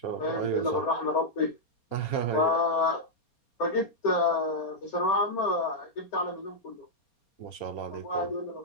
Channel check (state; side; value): late; right; 4.3 ms